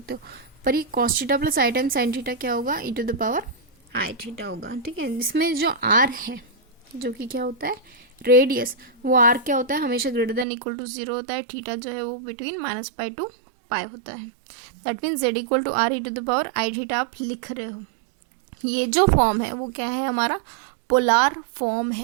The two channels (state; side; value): drops out; left; at 10.5 s